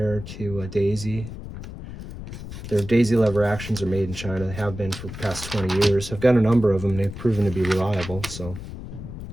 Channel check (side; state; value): left; noise; rumble, 11 dB below the sound